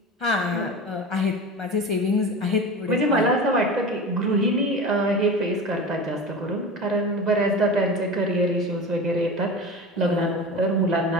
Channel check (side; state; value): both; normal; correlation 0.31